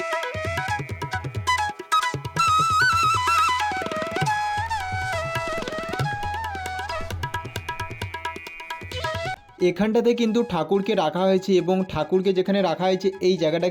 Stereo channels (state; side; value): identical; both; correlation 1.00